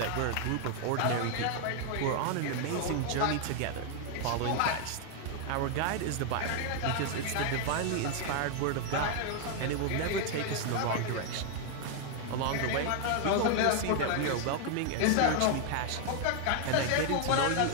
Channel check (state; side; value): different; both; correlation 0.00